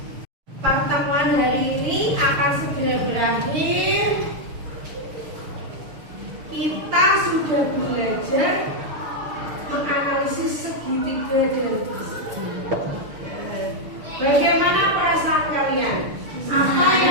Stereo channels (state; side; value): late; left; 6.5 ms